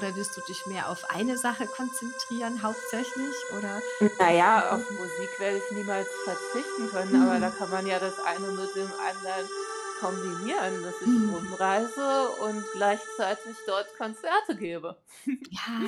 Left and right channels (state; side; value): identical; both; correlation 1.00